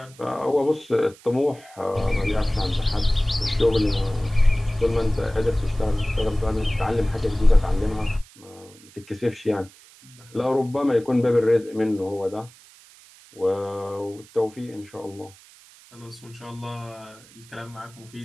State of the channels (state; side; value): noise; right; hiss, 24 dB below the sound